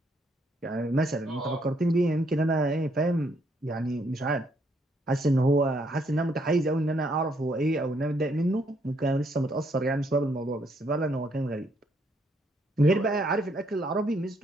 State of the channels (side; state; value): both; normal; correlation 0.71